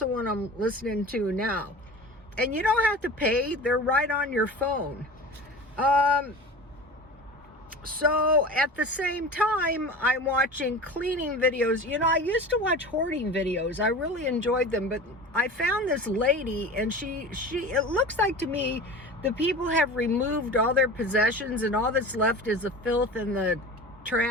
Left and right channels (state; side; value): normal; both; correlation 0.34